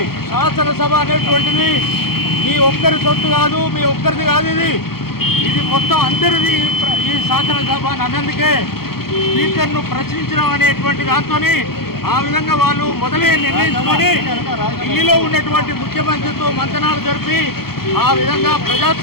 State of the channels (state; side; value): late; right; 0.94 ms